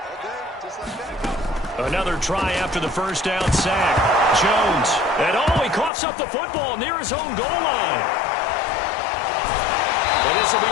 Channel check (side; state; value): right; drops out; at 5.9 s